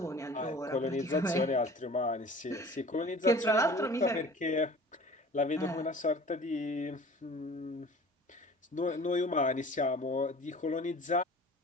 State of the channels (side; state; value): both; normal; correlation 0.44